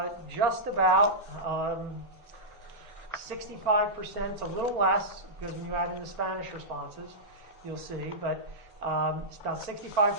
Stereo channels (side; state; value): both; normal; correlation -0.12